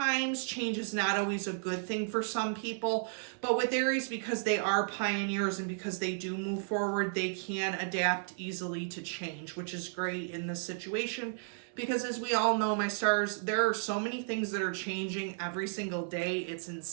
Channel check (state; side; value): silent; left; 55 dB below the other